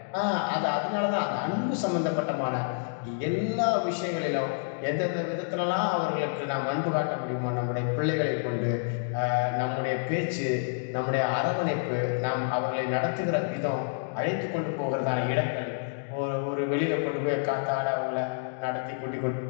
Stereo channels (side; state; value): right; silent; digital silence